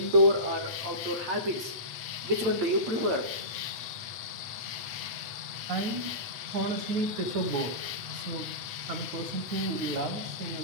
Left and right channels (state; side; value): late; left; 8.1 ms